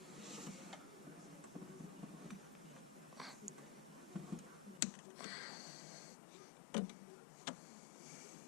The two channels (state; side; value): drops out; right; at 4.8 s